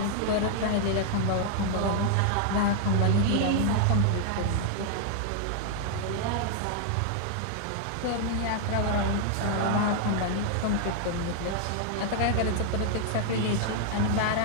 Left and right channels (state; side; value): different; both; correlation 0.00